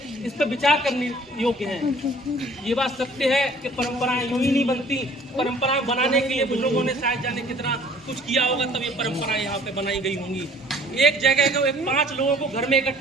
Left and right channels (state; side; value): normal; both; correlation 0.54